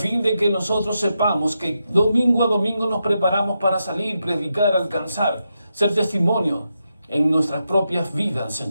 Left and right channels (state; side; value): inverted; both; correlation -0.86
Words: de que nosotros sepamos que domingo a domingo nos preparamos para salir, predicar, alcanzar, ser testimonio en nuestras propias vidas,